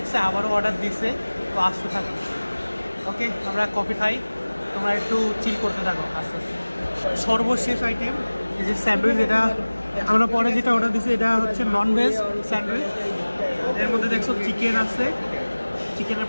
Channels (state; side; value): inverted; both; correlation -1.00